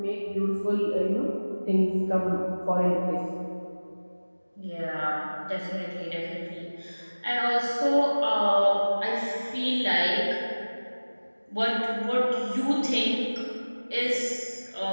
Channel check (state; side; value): inverted; both; correlation -1.00